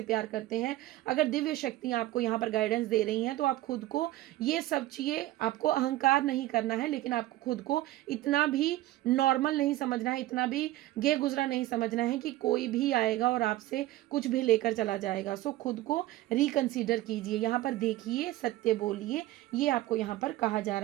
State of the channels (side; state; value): left; quieter; 16.2 dB